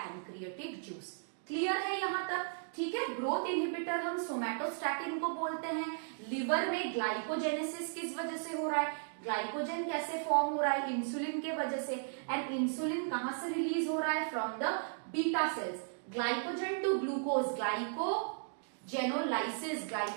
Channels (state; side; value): silent; left; digital silence